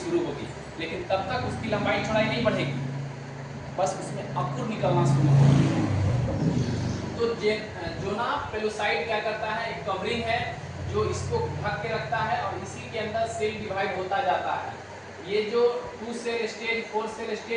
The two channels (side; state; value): both; identical; correlation 1.00